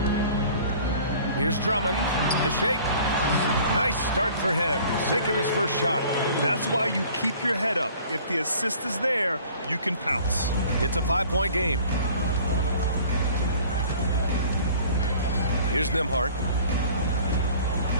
Here's Drummond. The shake. Nice start for him. Sinking his first shot. That's why you keep your head up. If the assist is there, you can pounce. It's a 5-point game. Here's Nembhard.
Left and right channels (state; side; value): inverted; both; correlation -0.50